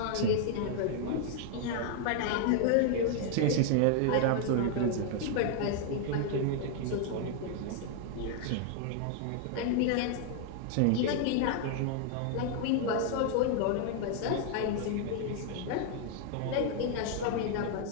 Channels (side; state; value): both; different; correlation 0.00